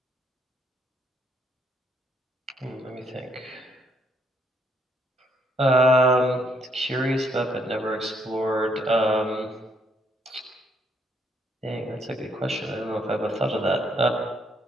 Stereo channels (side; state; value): both; normal; correlation 0.71